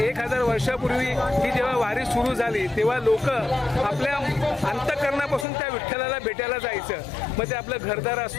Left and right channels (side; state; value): right; drops out; at 5.5 s